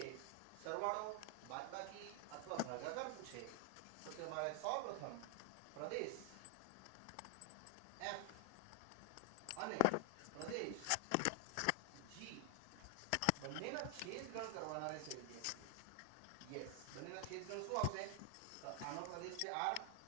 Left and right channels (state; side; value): different; both; correlation 0.00